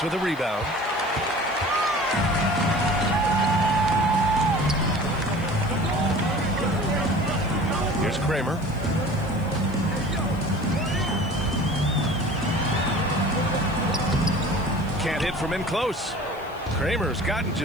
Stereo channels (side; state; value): left; noise; hiss, 26 dB below the sound